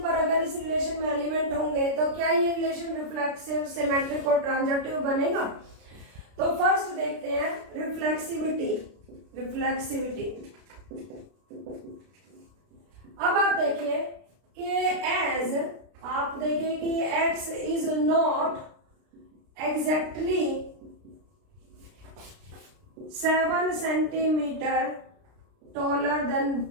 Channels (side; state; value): left; late; 33 ms